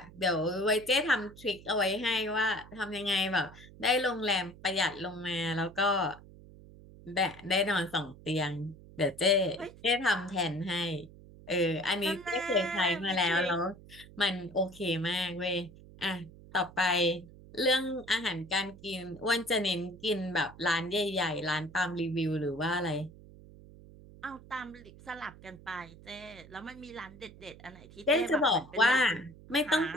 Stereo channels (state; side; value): noise; right; hum, 20 dB below the sound